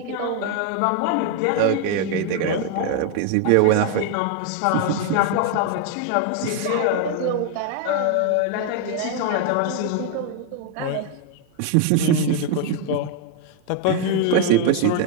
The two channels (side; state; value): both; different; correlation 0.01